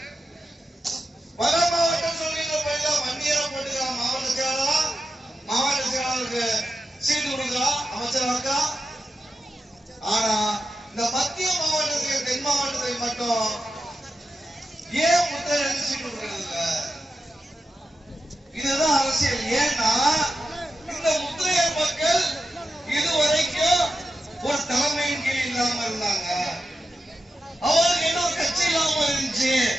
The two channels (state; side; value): normal; both; correlation 0.90